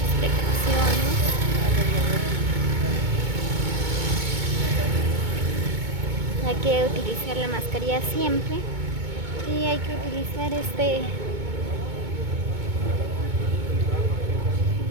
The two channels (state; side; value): late; left; 2.2 ms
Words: precauciones. Hay que utilizar la mascarilla siempre. Y hay que utilizar